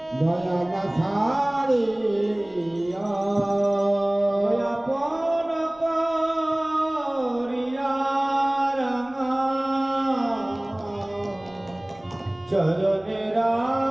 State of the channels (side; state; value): right; noise; rumble, 29 dB below the sound